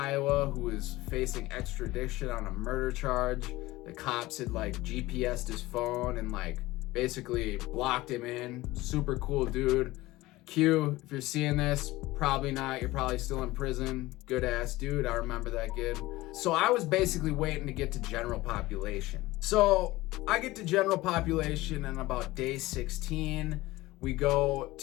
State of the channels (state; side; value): quieter; right; 18.7 dB